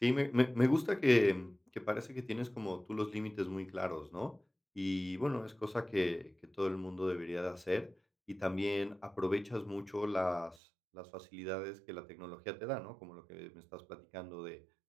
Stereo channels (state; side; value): drops out; left; at 10.6 s